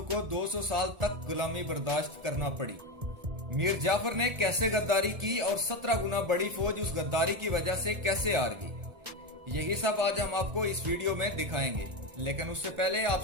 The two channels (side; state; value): left; late; 1.4 ms